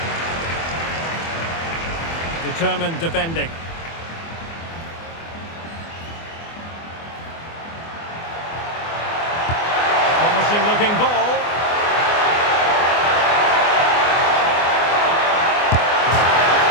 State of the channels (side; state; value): right; late; 24 ms